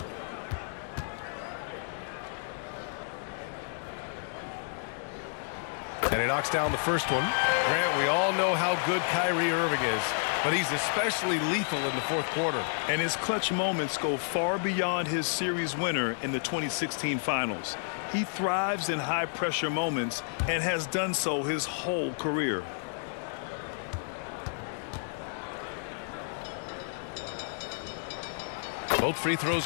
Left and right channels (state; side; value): silent; right; digital silence